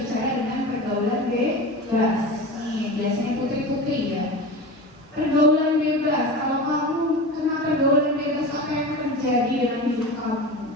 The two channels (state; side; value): normal; both; correlation 0.30